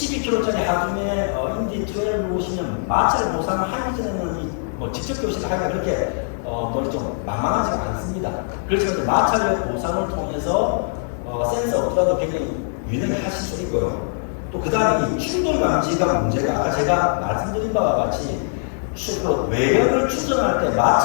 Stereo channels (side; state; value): right; silent; digital silence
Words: 하중에 인디 12를 보시면 마찰 보상을 하기 전에는 직접 교시를 하기가 그렇게 좀 만만하지가 않습니다. 그렇지만 마찰력 보상을 통해서 센서 없더라도 굉장히 유연하게 하실 수 있고요. 또 그 다음에 이 충돌 감지가 문제가 아까 제가 말씀드린 바와 같이 외력을 추정할 때